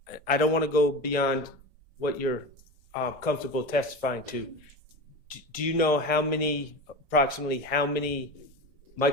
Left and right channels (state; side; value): normal; both; correlation 0.26